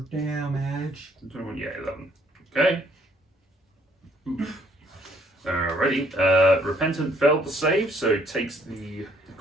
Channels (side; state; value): both; normal; correlation 0.64